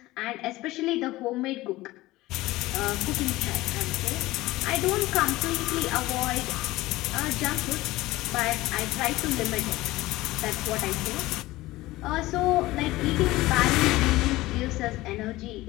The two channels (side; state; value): right; quieter; 18.4 dB